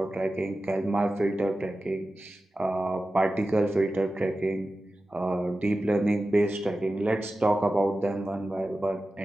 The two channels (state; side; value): normal; both; correlation 0.94